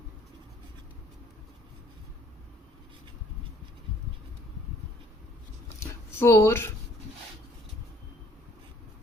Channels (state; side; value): normal; both; correlation 0.61